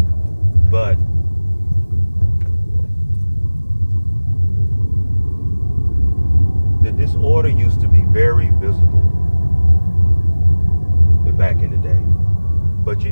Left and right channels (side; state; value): both; inverted; correlation -1.00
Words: But the disorder used to be very visible back in the day. But you